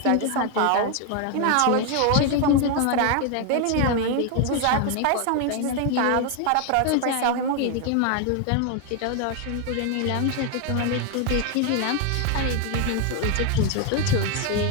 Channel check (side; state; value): both; different; correlation 0.01